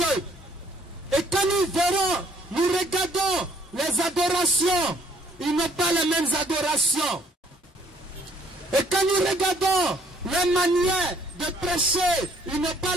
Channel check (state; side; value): normal; both; correlation 0.63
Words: Et quand nous verrons, nous regardons les adorations, ils n'ont pas les mêmes adorations. Et quand nous regardons les manières de prêcher, ils n'ont pas